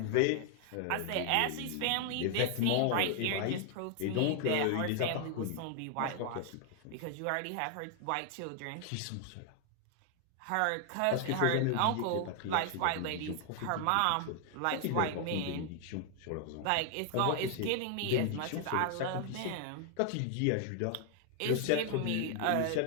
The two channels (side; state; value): both; different; correlation 0.00